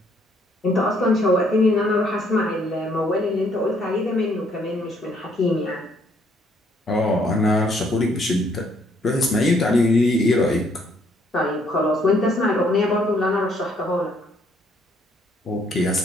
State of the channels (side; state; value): both; normal; correlation 0.67